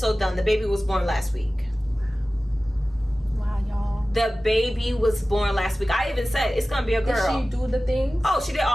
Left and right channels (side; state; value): both; normal; correlation 0.96